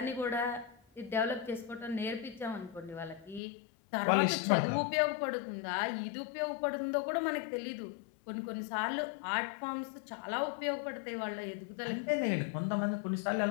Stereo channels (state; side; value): drops out; right; at 3.4 s